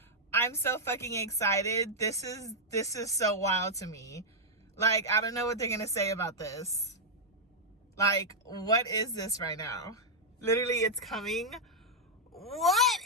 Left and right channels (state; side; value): normal; both; correlation -0.05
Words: I'm so fucking excited. This is so wild to me. Like, I don't know what they're gonna say about this. Like, what is this right now? Literally, it's coming. What